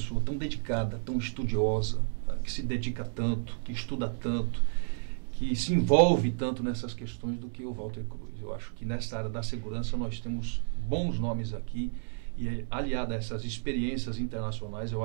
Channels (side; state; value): left; silent; 57 dB below the other